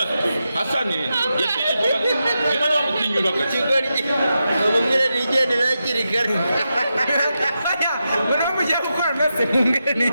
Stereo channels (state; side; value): inverted; both; correlation -0.88